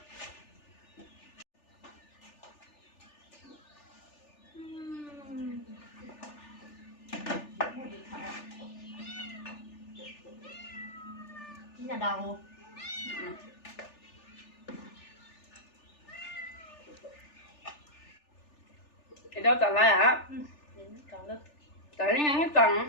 nhà đầu thì đâu tận lại hả còn được tại những cái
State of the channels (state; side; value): late; right; 3.4 ms